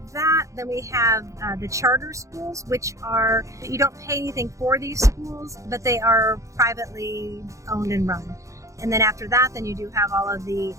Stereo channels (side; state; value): left; late; 0.15 ms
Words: that, then we have the charter schools, which are, you don't pay anything for these schools, but they are privately owned and run. And then after that, then you do have all of the